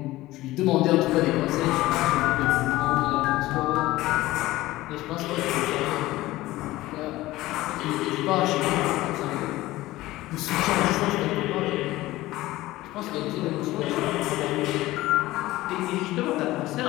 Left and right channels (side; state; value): right; quieter; 17.5 dB